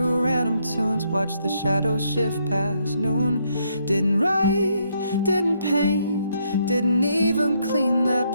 random tunes. Watched the shadows shift past noon. Didn't write, didn't paint, didn't even clean that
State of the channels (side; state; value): both; inverted; correlation -0.73